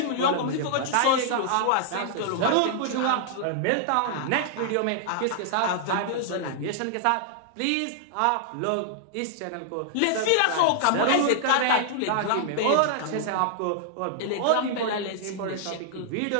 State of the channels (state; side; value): different; both; correlation -0.01